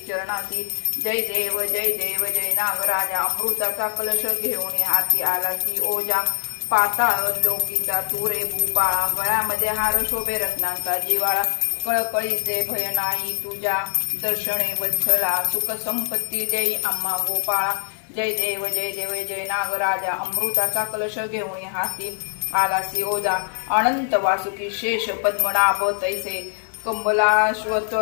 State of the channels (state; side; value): silent; right; digital silence